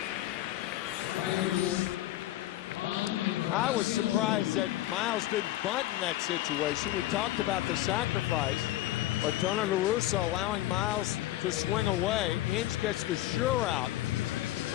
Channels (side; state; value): right; quieter; 15.1 dB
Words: I was surprised that Miles didn't bunt in that situation. We talked about the sacrifice, but Tony La Russa allowing Miles to swing away. Inge gets the sure out.